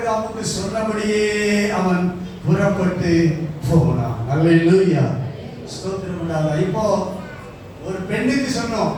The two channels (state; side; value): identical; both; correlation 1.00